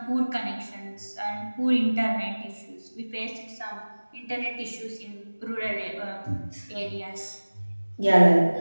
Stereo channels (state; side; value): inverted; both; correlation -1.00